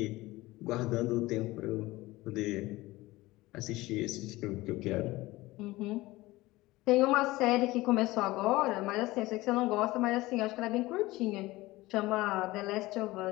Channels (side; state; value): right; quieter; 19.3 dB